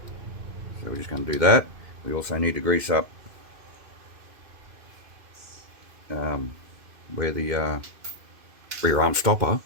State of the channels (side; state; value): left; late; 2.5 ms